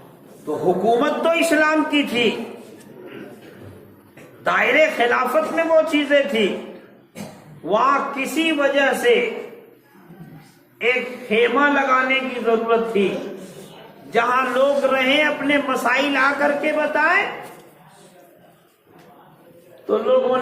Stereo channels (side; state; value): both; identical; correlation 1.00